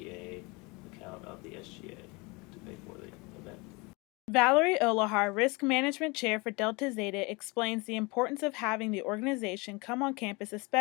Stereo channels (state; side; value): quieter; right; 26.8 dB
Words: account of the SGA to pay for the event. Valerie Olohar, Risk Management Chair for Delta Zeta, explains the importance of having the organization come on campus,